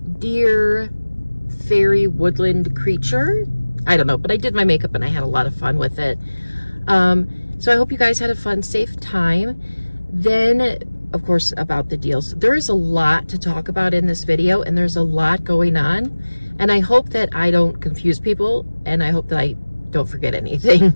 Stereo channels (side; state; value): both; inverted; correlation -1.00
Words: deer, fairy, woodland creature. I don't know, but I did my makeup and I had a lot of fun with it. So I hope you guys had a fun, safe time. Then, of course, about the deals. There is a lot to talk about in this video, and there's a lot going on. And I hope that I don't confuse people, and I hope that I don't forget anything.